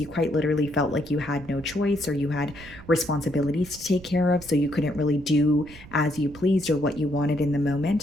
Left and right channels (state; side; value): noise; right; rumble, 19 dB below the sound